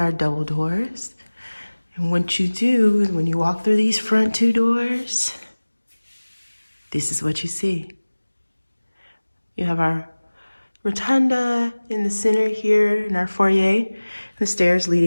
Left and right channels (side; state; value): both; inverted; correlation -1.00